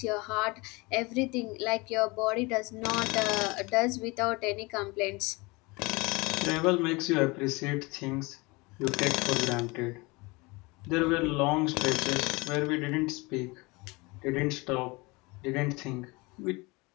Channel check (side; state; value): right; quieter; 25.3 dB